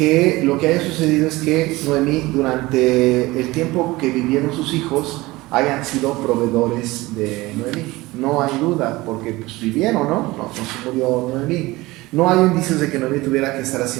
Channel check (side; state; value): left; quieter; 20.3 dB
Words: lo que haya sucedido es que Noemí, durante el tiempo que vivieron sus hijos, hayan sido proveedores de Noemí. No hay duda, porque pues vivieron, ¿no? No se murió Noemí. No hay indicios de que Noemí tuviera que estar